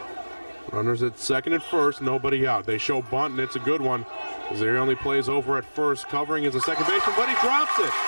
Runners at second and first, nobody out. They show bunt, and it's a good one, as he only plays over at first, covering as a second baseman, but he drops it.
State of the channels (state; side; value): inverted; both; correlation -1.00